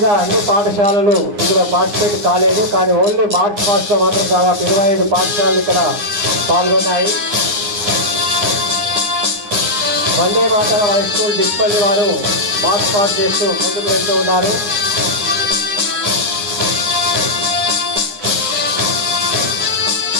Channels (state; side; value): late; left; 9.8 ms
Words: అన్ని పాఠశాలలు ఇందులో పార్టిసిపేట్ కాలేదు. కానీ ఓన్లీ మార్చ్ పాస్ట్లో మాత్రం దాదాపు 25 పాఠశాలలు ఇక్కడ పాల్గొన్నాయి. వందే మాతరం హై స్కూల్ డిస్పల్లి వారు మార్చ్ పాస్ చేస్తూ ముందుకు వెళ్తూ ఉన్నారు.